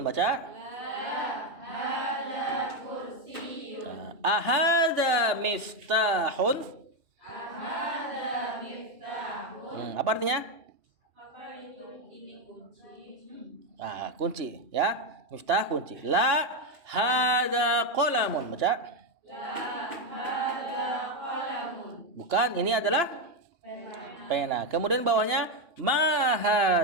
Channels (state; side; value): late; left; 2.8 ms